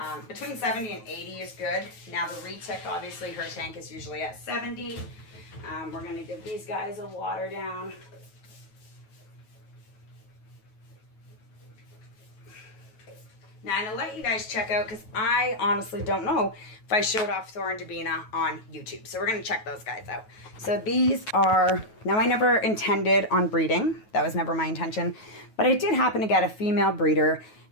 between 70 and 80 is good. Now the retic, obviously her tank is usually at 70. We're going to give these guys a water down. Now, I'm going to let you guys check out, because I honestly don't know if I showed off Thor and Davina on YouTube. So we're going to check those guys out. So these are, now I never intended on breeding. That was never my intention. But I did happen to get a female breeder,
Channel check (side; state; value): right; late; 9.3 ms